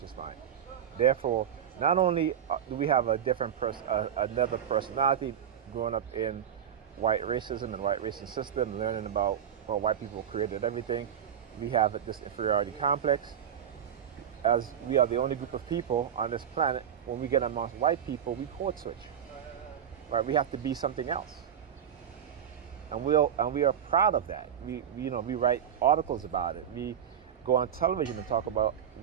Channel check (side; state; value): left; quieter; 9.0 dB